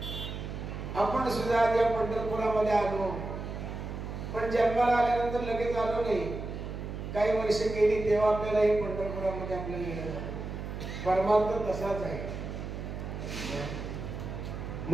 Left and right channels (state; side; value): noise; right; hum, 7 dB below the sound